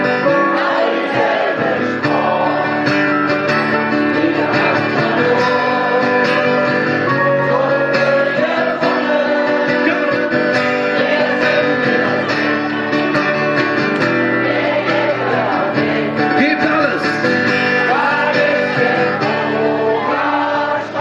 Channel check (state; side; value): identical; both; correlation 1.00